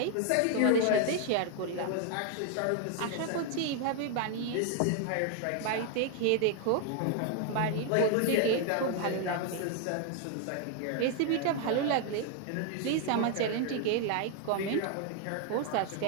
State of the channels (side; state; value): both; different; correlation 0.00